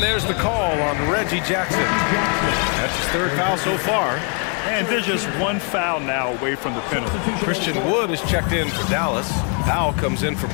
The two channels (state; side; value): quieter; right; 39.4 dB